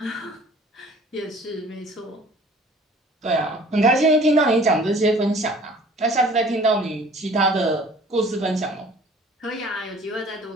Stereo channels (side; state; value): both; normal; correlation 0.51